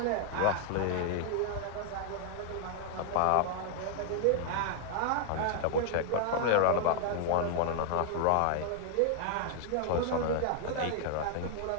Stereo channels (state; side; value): different; both; correlation 0.00